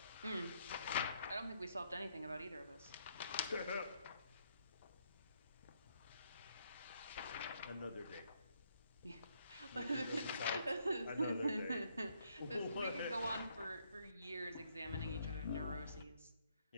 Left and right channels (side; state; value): both; inverted; correlation -0.72